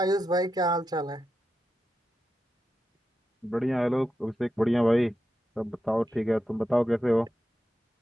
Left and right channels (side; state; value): both; normal; correlation 0.88